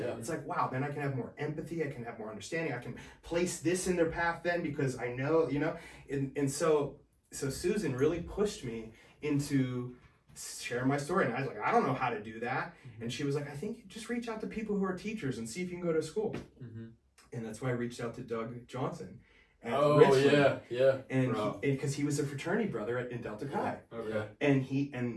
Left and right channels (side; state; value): both; identical; correlation 1.00